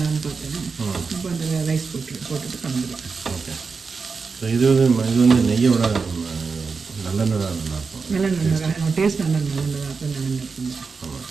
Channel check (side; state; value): left; quieter; 4.9 dB